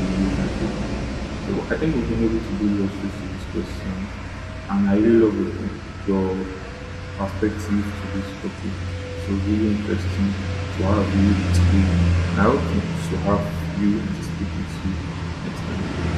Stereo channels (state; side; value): identical; both; correlation 1.00